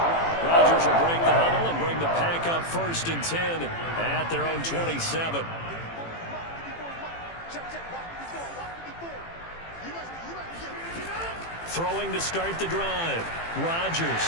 Rodgers will break the huddle and bring the pack up 1st and 10 at their own 27. Throwing to start the drive. Rodgers.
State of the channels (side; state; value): right; late; 18 ms